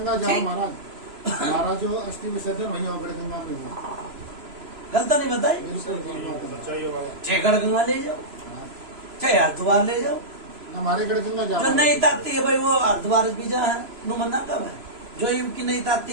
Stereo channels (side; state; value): left; late; 3.0 ms